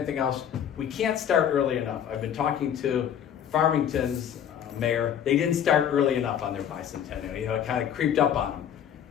else, we can't start early enough. I've been talking to Farmington's mayor. They didn't start early enough on their bicentennial. You know, it kind of creeped up on them.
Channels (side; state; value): right; quieter; 9.2 dB